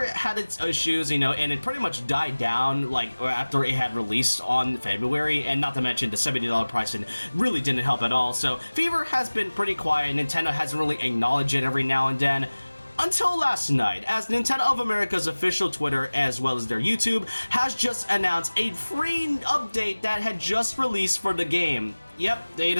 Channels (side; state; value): both; inverted; correlation -1.00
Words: had its issues, and it pretty much died down like after it had released on February, and not to mention the $70 pricing really didn't help at all. So Fever has been pretty quiet. Nintendo hasn't really acknowledged it every now and then. Until last night, as Nintendo of America's official Twitter, as well as their YouTube, has just announced a free update that had just released for the game. Yep, they